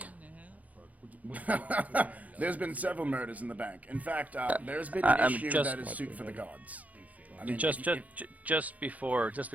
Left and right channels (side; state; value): left; late; 0.074 ms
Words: There's been several murders in the bank. In fact, there's been I- an I'm issue just- that is suit for the gods. I mean, Just before